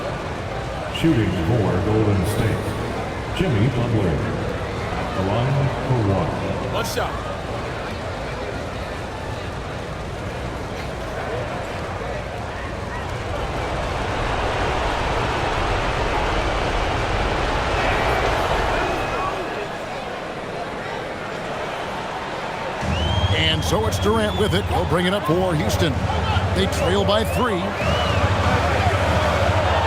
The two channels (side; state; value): both; identical; correlation 1.00